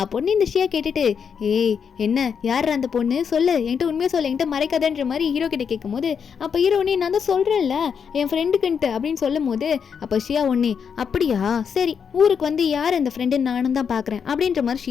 பொண்ணு இந்த ஷியா கேட்டுட்டு ஏய் என்ன யார் அந்த பொண்ணு சொல்லு, என்கிட்ட உண்மையாக சொல்ல, என்கிட்ட மறைக்காதன்ற மாதிரி ஹீரோ கிட்ட கேட்கும் போது, அப்போ ஹீரோ ஒன்னே நான் தான் சொல்கிறேன்ல என் ஃப்ரெண்டுக்குன்ட்டு அப்படின்னு சொல்லும் போது, அப்போ ஷியா ஒன்னே அப்படியா சரி ஊருக்கு வந்து யார் அந்த ஃப்ரெண்டுன்னு நானும் தான் பார்க்குறேன் அப்படின்ற மாதிரி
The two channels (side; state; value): right; quieter; 6.8 dB